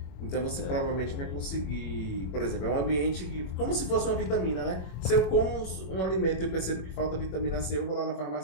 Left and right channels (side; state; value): right; late; 21 ms